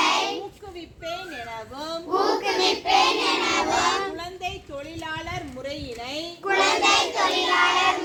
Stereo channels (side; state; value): both; identical; correlation 1.00